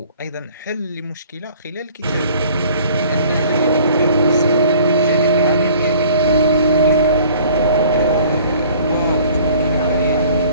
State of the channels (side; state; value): both; inverted; correlation -0.52